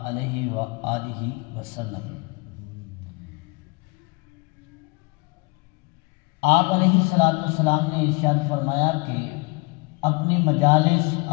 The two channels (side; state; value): right; quieter; 27.6 dB